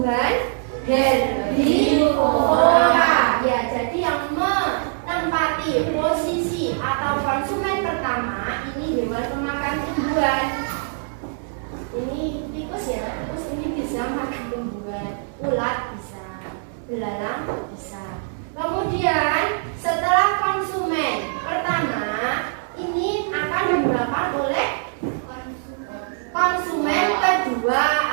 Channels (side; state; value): left; silent; digital silence